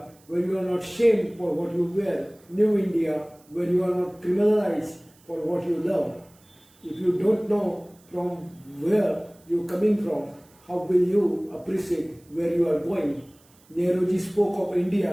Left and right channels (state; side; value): noise; right; hiss, 30 dB below the sound